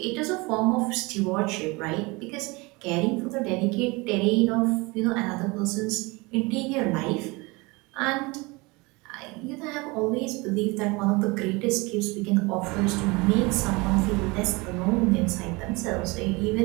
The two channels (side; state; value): left; quieter; 25.1 dB